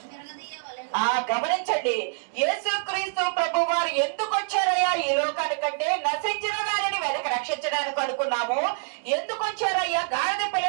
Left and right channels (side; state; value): left; silent; digital silence